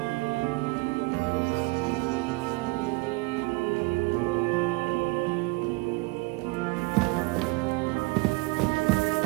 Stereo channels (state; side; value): quieter; left; 24.8 dB